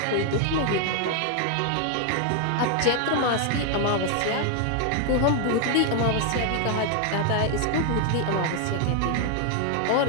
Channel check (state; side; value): different; both; correlation 0.00